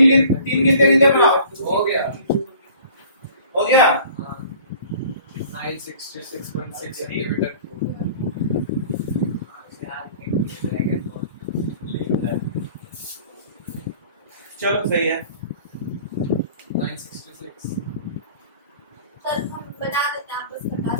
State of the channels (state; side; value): inverted; both; correlation -0.49